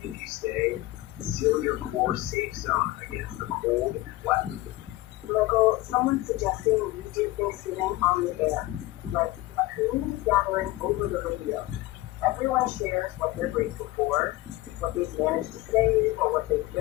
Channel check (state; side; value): quieter; right; 18.5 dB